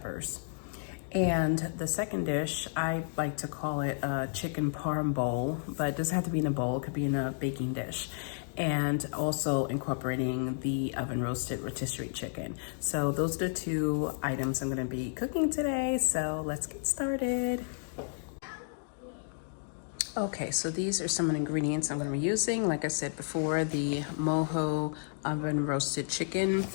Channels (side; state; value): right; silent; digital silence